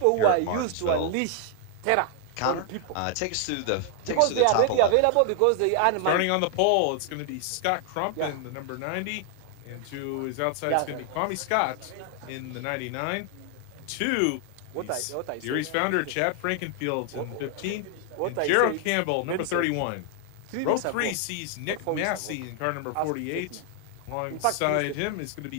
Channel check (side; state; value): both; different; correlation 0.00